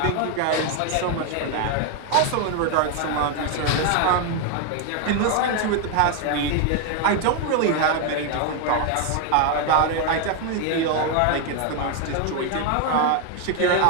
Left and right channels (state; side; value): different; both; correlation 0.01